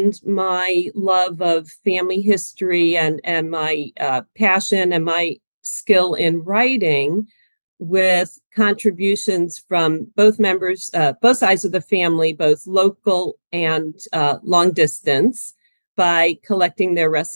my love of family history and my passion and my skill in writing with contributions from both members, both sides of the family, both local and long distance, by collecting their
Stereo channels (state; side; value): inverted; both; correlation -1.00